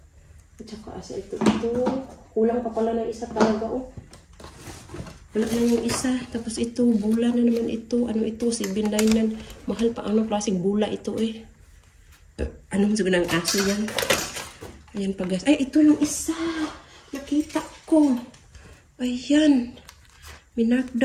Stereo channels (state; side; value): identical; both; correlation 1.00